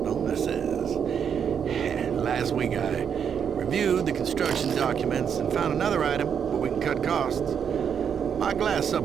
bonuses. Last week I reviewed the construction documents and found another item where we can cut costs. My glass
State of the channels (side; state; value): left; quieter; 7.6 dB